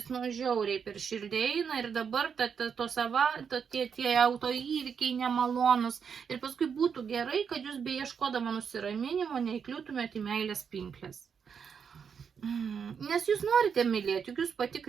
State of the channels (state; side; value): quieter; left; 6.8 dB